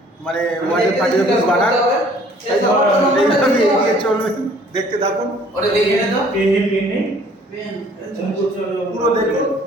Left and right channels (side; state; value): both; normal; correlation 0.56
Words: মানে ওয়ার্ডের পার্টি অফিস বানান তাই তো? এইভাবে এগিয়ে চলবেন দেখতে থাকুন ওরে দেখে নে তো পেন নেই পেন পুরো দেখুন